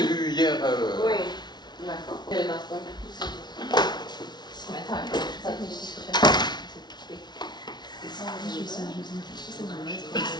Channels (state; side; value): late; right; 0.20 ms